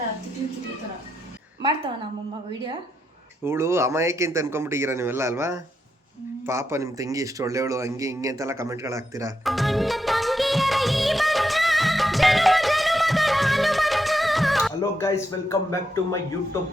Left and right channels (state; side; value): normal; both; correlation 0.83